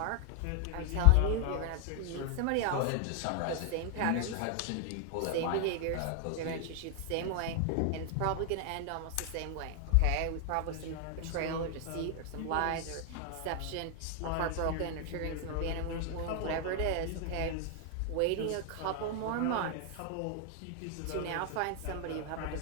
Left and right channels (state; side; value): different; both; correlation 0.00